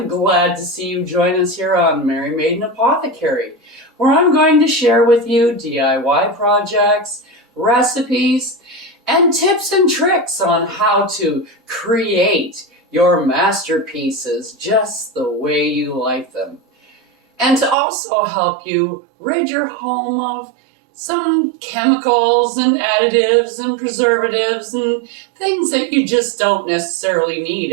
glad to see you join us here on Mary Maiden Apothecary, where I'm going to share with you DIY projects, recipes, and tips and tricks on how to create your masterpieces just the way you like them. And to also help you rid your home of some chemicals and additives and preservatives and things that you just don't necessarily need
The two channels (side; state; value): left; drops out; at 17.8 s